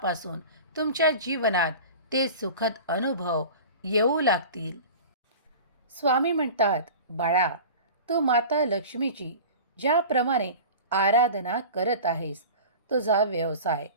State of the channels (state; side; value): inverted; both; correlation -0.36